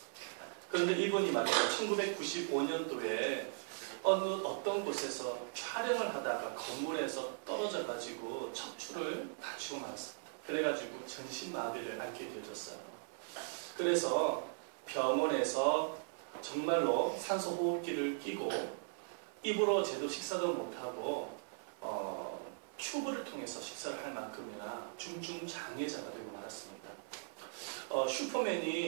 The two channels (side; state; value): left; silent; 52 dB below the other